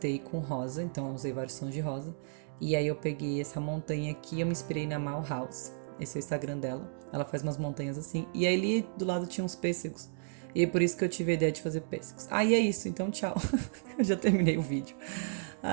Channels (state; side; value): silent; left; digital silence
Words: com rosa, então eu usei vários tons de rosa. E aí eu peguei essa montanha aqui, eu me inspirei na Mal House, esse é o Instagram dela, ela faz umas montanhas assim, e aí ali do lado tinha uns pêssegos, e é por isso que eu tive a ideia de fazer pêssegos. E é isso, então tchau, eu já terminei o vídeo.